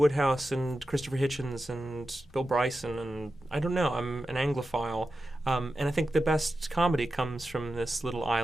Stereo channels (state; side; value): normal; both; correlation 0.92